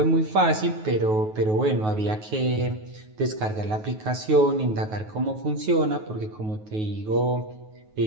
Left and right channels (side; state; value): left; late; 9.4 ms